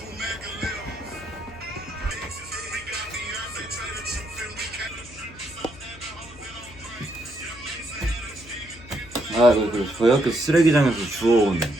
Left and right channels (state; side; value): noise; left; hum, 20 dB below the sound